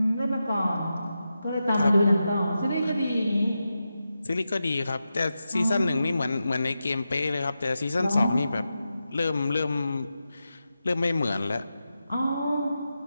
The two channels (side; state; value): both; inverted; correlation -0.90